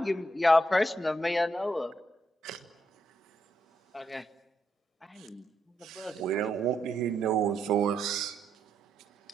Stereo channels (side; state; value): both; normal; correlation 0.79